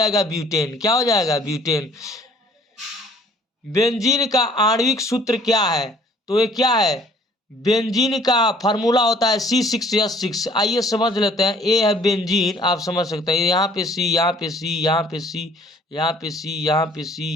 ब्यूटेन। क्या हो जाएगा? ब्यूटेन। बेंजीन का आणविक सूत्र क्या है? तो ये क्या है? बेंजीन का फार्मूला होता है C6H6। आइए समझ लेते हैं। ए है बेंजीन, आप समझ सकते हैं, यहाँ पे सी, यहाँ पे सी, यहाँ पे सी, यहाँ पे सी, यहाँ पे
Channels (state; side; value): normal; both; correlation 0.56